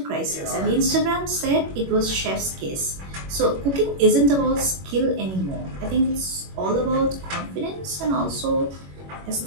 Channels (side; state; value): left; late; 21 ms